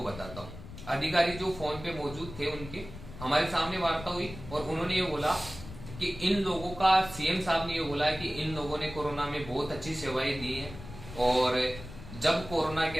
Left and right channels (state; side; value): noise; left; rumble, 13 dB below the sound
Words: बताता हूँ। अधिकारी जो फोन पे मौजूद थे उनके हमारे सामने वार्ता हुई और उन्होंने ये बोला कि इन लोगों का, सीएम साहब ने ये बोला है कि इन लोगों ने कोरोना में बहुत अच्छी सेवाएं दी हैं और जब कोरोना के